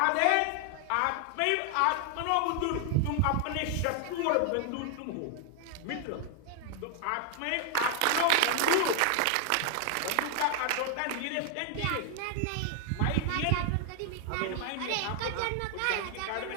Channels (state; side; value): different; both; correlation 0.00